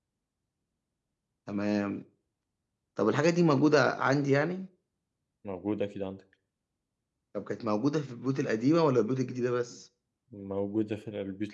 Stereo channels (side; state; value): both; identical; correlation 1.00